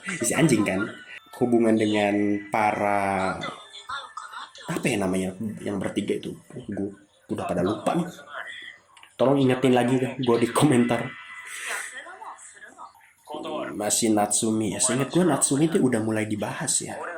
si anjing kan, hubungan dengan para apa ya namanya yang bertiga itu, gue udah pada lupa nih. Tolong ingetin lagi kan gue di komentar. Masih Natsumi ya, seingat gue Natsumi itu udah mulai dibahas ya,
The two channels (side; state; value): both; identical; correlation 1.00